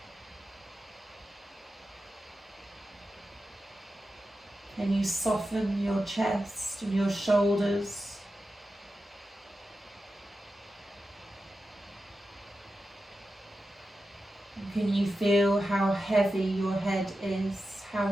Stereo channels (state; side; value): normal; both; correlation 0.91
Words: Can you soften your chest and your shoulders? Can you feel how heavy your head is, how